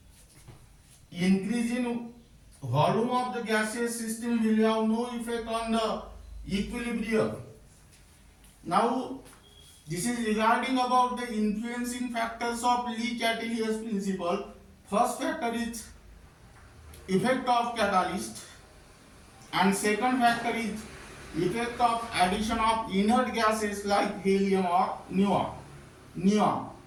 increase in volume of the gaseous system will have no effect on the equilibrium. Now this is regarding about the influencing factors of Le-Chatelier's principle. First factor is effect of catalyst, and second factor is effect of addition of inert gases like helium or neon.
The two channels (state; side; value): identical; both; correlation 1.00